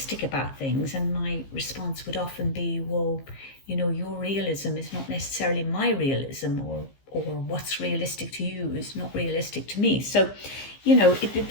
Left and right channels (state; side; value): late; right; 15 ms